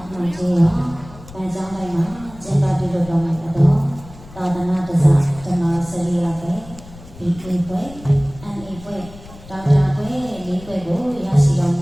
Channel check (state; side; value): noise; left; rumble, 18 dB below the sound